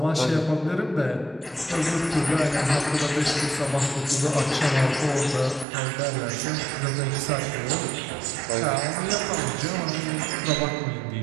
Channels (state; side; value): drops out; left; at 5.7 s